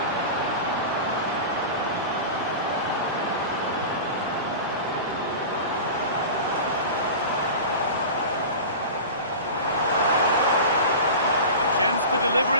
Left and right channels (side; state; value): both; inverted; correlation -0.31